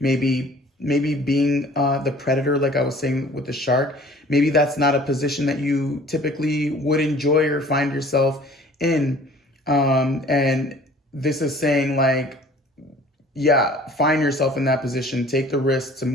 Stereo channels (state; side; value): normal; both; correlation 0.50